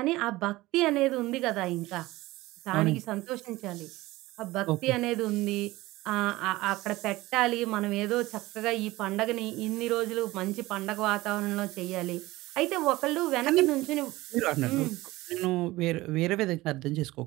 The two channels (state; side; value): quieter; left; 18.9 dB